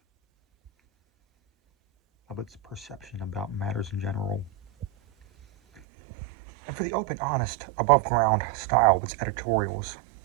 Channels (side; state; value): left; drops out; at 5.8 s